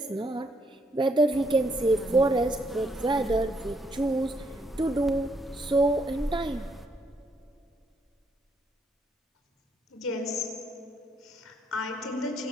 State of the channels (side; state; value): both; normal; correlation 0.72